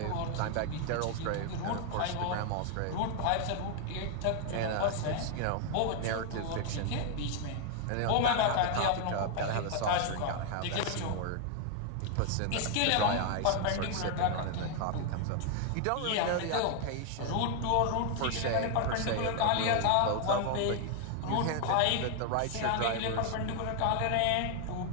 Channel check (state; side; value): different; both; correlation 0.00